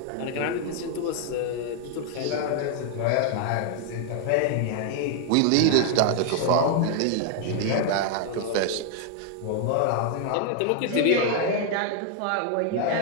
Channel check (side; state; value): both; different; correlation 0.00